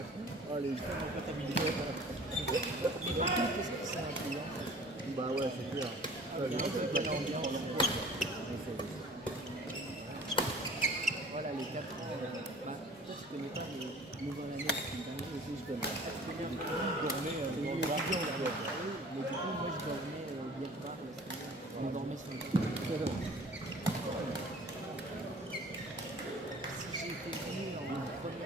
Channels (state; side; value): normal; both; correlation 0.47